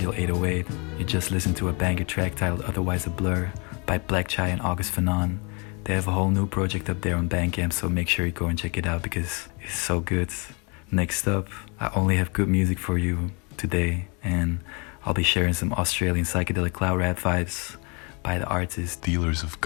808. You just listened to a banger track titled Otherwise a Blur by blackchai and August Fanon. They have a whole new project up there on Bandcamp, so make sure you go and check it out because it's so good. Next up, I only have good music for you today, and I'll be sharing some Australian psychedelic cloud rap vibes by the artist Dealers of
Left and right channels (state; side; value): quieter; right; 32.4 dB